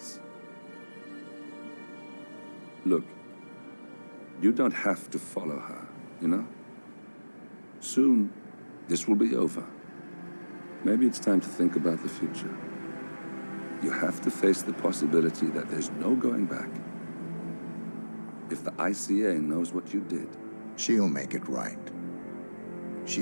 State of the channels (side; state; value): both; inverted; correlation -1.00